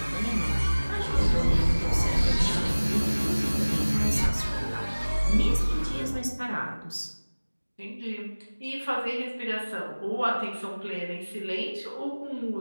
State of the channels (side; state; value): both; inverted; correlation -1.00